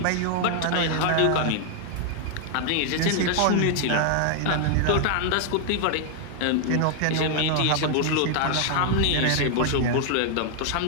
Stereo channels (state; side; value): different; both; correlation 0.00